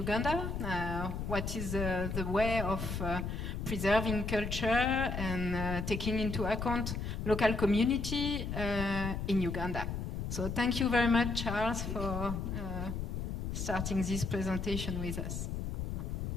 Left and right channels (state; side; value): noise; left; rumble, 3 dB below the sound